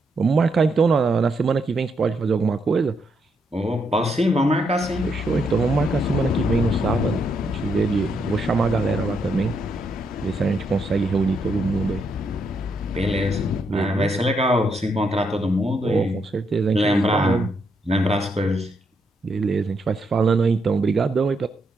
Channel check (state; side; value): normal; both; correlation 0.78